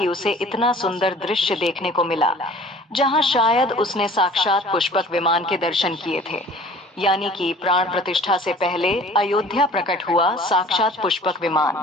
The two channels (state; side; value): normal; both; correlation 0.48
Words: उसे इतना सुंदर दृश्य देखने को मिला, जहां शायद उसने साक्षात पुष्पक विमान के दर्शन किए थे। यानी कि प्राण प्रतिष्ठा से पहले अयोध्या प्रकट हुआ साक्षात पुष्पक विमान।